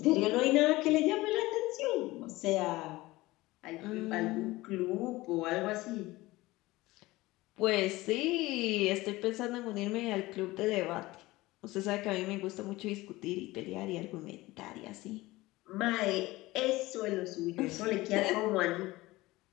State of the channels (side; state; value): right; quieter; 19.5 dB